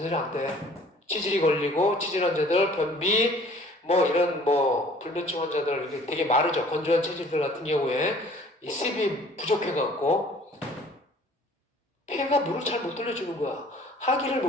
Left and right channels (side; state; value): both; normal; correlation 0.53